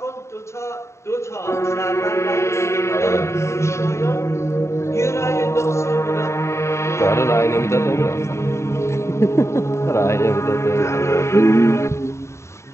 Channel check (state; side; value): late; right; 0.14 ms